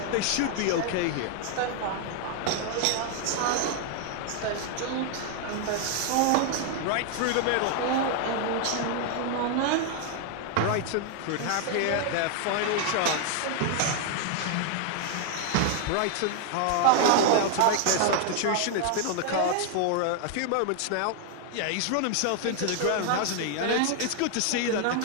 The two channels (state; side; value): different; both; correlation 0.00